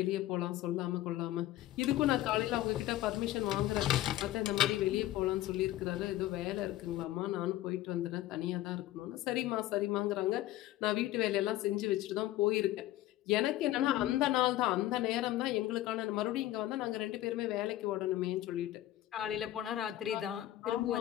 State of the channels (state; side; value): quieter; right; 14.7 dB